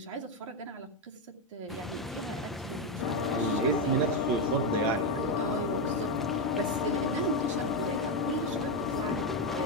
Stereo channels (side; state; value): both; normal; correlation 0.07